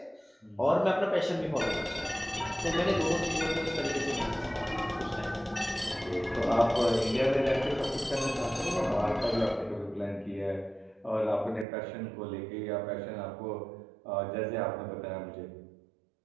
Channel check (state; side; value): drops out; left; at 11.7 s